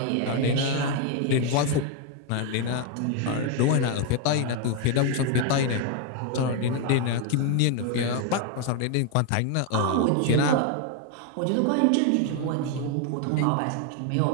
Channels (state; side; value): different; both; correlation 0.01